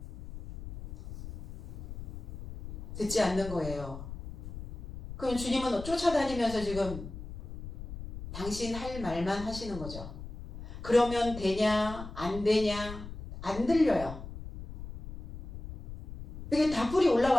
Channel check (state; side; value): noise; left; rumble, 11 dB below the sound